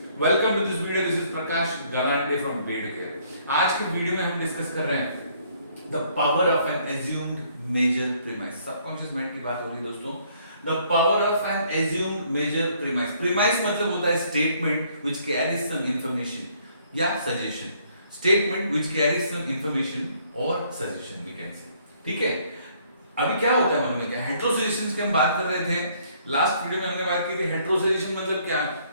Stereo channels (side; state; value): both; inverted; correlation -0.65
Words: welcome to this video. This is Prakash Galande from bed care. आज के video में हम डिस्कस कर रहे हैं the power of an assumed major premise. Subconscious mind की बात हो रही है दोस्तों। The power of an assumed major premise. Premise मतलब होता है statement which carries some information या suggestion. Statement which carries some information और सजेशन वी कैन से। ठीक है, अभी क्या होता है मालूम है क्या? हेटेरोसजेशंस की हम बात कर रहे थे। लास्ट वीडियो में हमने बात की थी हेटेरोसजेशन मतलब क्या,